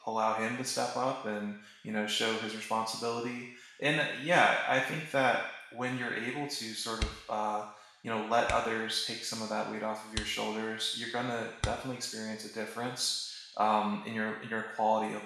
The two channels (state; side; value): identical; both; correlation 1.00